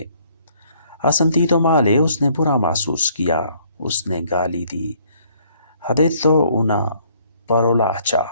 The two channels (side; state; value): both; inverted; correlation -0.63